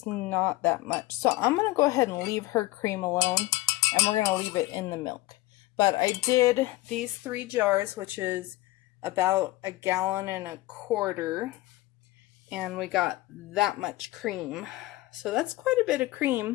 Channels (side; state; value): right; quieter; 18.5 dB